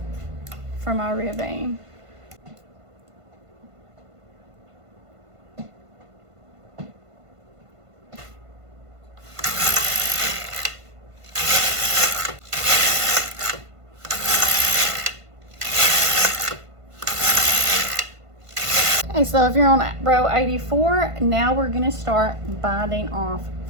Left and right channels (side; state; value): left; late; 1.5 ms